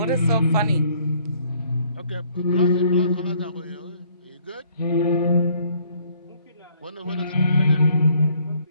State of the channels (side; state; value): both; inverted; correlation -0.63